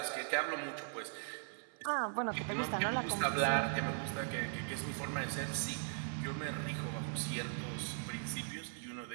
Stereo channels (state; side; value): silent; left; 52 dB below the other